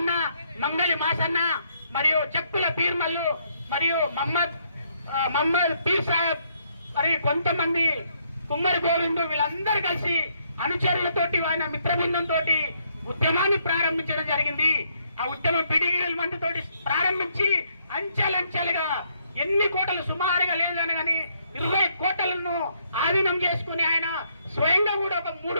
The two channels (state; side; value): inverted; both; correlation -0.71